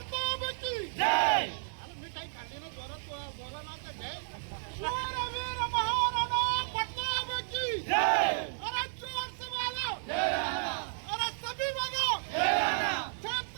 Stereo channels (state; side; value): silent; left; digital silence